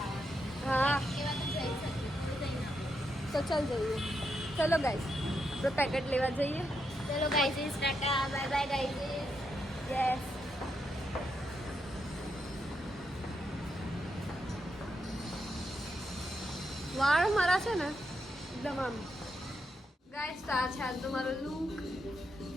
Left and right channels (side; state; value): both; normal; correlation 0.82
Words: હા તો ચાલ જઈએ. ચલો ગાઈસ, તો પેકેટ લેવા જઈએ. ચલો guys, Tata bye bye guys. Yes. વાળ મારા છે ને એકદમ આમ. ગાઈસ, તો આ છે આજ તો મારો લુક.